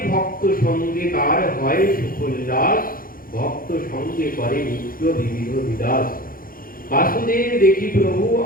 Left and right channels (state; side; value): late; right; 0.41 ms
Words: ভক্ত সঙ্গে তার হয় সুখোল্লাস ভক্ত সঙ্গে করে নিত্য বিবিধ বিলাস। বাসুদেব দেখি প্রভু